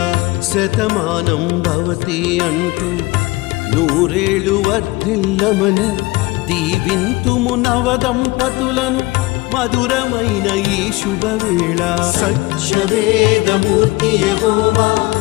శతమానం భవతి అంటూ నూరేళ్ళు వర్ధిల్లమని దీవింతుము నవదంపతులను మధురమైన ఈ శుభవేళ. సత్యవేదమూర్తి యెహోవా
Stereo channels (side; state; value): right; quieter; 21.7 dB